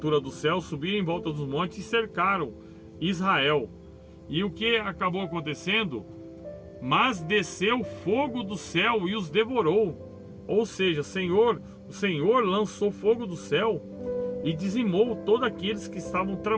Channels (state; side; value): identical; both; correlation 1.00